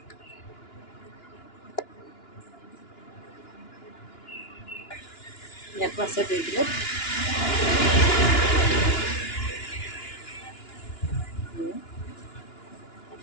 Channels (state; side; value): late; right; 2.9 ms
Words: ইয়াতো আছে 2 কিলো।